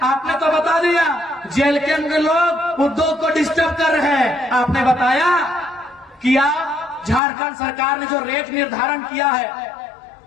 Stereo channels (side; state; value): right; drops out; at 7.2 s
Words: आपने तो बता दिया जेल के अंदर लोग उद्योग को डिस्टर्ब कर रहे हैं। आपने बताया कि आप झारखंड सरकार ने जो रेट निर्धारण किया है,